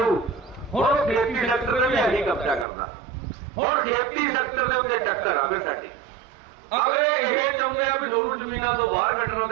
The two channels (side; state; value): left; drops out; at 2.7 s